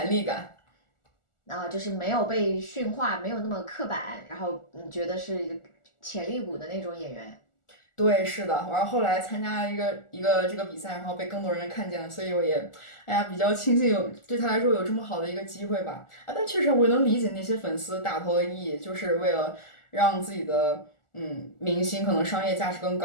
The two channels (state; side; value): late; right; 1.4 ms